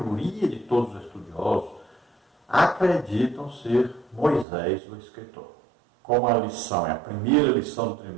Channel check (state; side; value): drops out; left; at 4.5 s